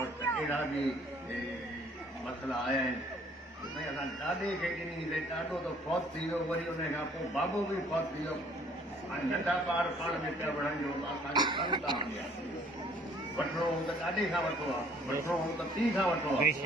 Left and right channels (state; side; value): normal; both; correlation 0.58